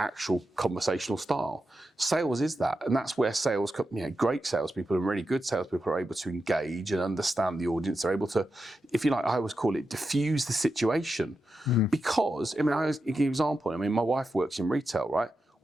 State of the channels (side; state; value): both; normal; correlation 0.89